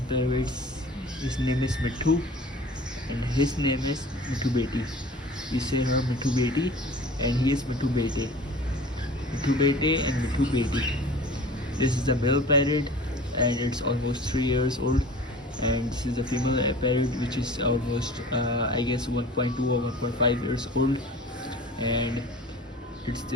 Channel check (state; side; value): normal; both; correlation 0.42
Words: parrots. His name is Mithu, and his name is Mithu Beti. We say her Mithu Beti, and he is Mithu Bete. Mithu Bete and Mithu Beti. This is a male parrot, and it's almost 3 years old. And this is a female parrot, which is almost I guess 1.2 or 1.5 years old. And it's